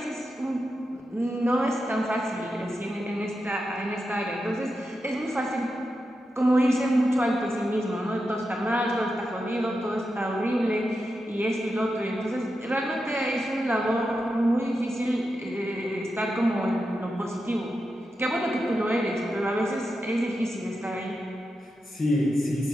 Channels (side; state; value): both; normal; correlation 0.89